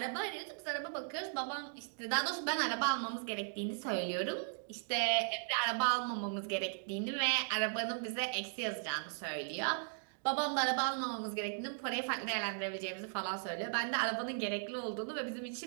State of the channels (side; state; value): left; silent; digital silence